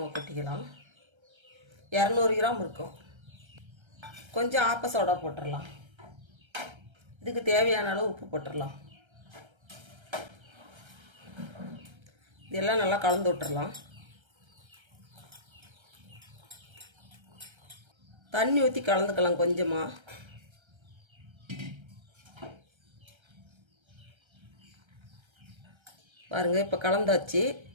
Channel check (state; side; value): late; left; 1.3 ms